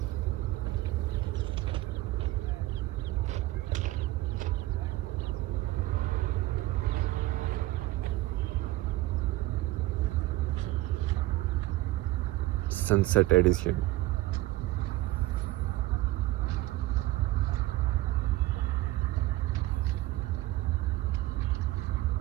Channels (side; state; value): left; quieter; 17.3 dB